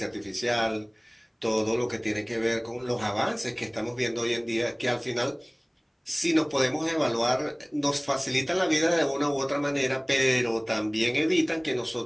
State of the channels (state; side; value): identical; both; correlation 1.00